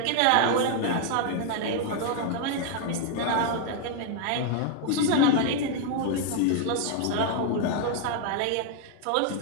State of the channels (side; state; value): both; different; correlation 0.00